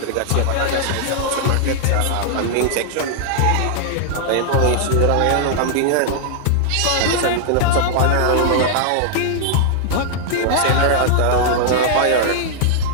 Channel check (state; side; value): different; both; correlation -0.01